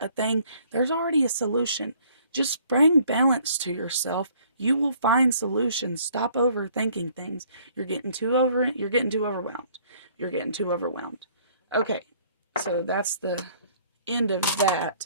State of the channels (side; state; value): both; inverted; correlation -0.60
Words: thing. There's already a solution. Just bring balance to yourself. You will find solutions. Stop overthinking things. You're getting too overwhelmed. You're getting too overwhelmed. Okay, so that's the end of